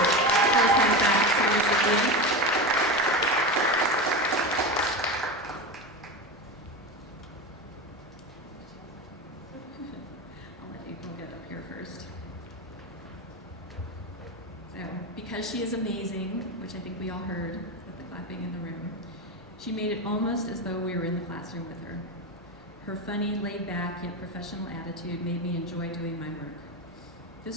faculty recipient. Because she is amazing, which I think we all heard with the clapping in the room, She made it almost as though we were in the classroom with her. Her funny, laid-back, yet professional attitude made me enjoy doing my work.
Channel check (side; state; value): both; normal; correlation 0.21